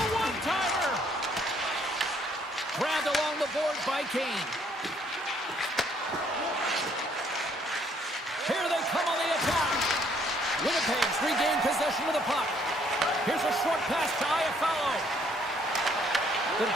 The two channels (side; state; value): both; normal; correlation 0.66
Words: one-timer. Grabbed along the board by Kane. Here they come on the attack. Winnipeg's regained possession of the puck. Here's a short pass to Iafallo. The